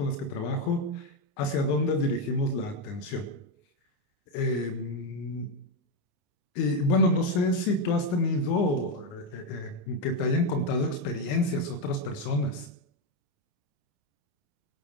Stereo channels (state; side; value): late; right; 29 ms